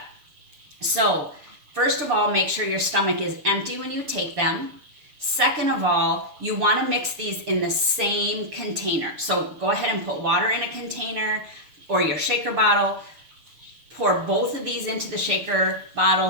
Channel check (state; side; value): late; left; 6.9 ms